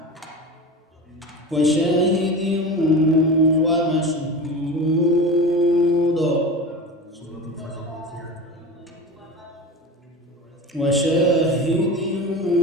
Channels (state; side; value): normal; both; correlation 0.30